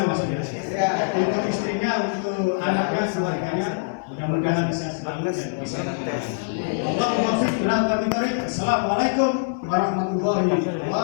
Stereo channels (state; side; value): quieter; right; 39.9 dB